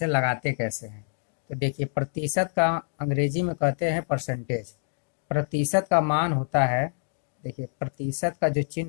लगाते कैसे हैं। तो देखिए, प्रतिशत का अंग्रेजी में कहते हैं परसेंटेज। प्रतिशत का मान होता है, देखिए प्रतिशत का जो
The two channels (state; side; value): silent; right; digital silence